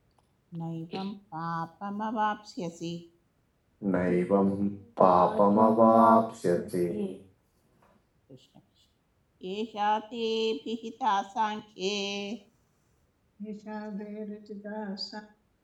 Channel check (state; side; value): identical; both; correlation 1.00